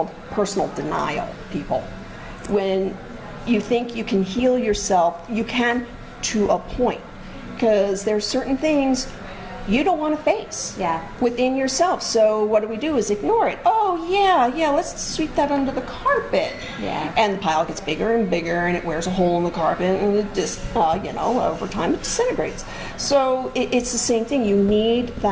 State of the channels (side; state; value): both; identical; correlation 1.00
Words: personal denial, people. When you think you can heal yourself, you can to a point. Because there's certain things you don't want to face Yeah. within yourself. So what do is ignore it. Oh yeah, let's sweep that under the carpet. Yeah. And the pile gets bigger and bigger, and it wears a hole in the carpet, and it just, over time it disintegrates. So it's the same thing. You need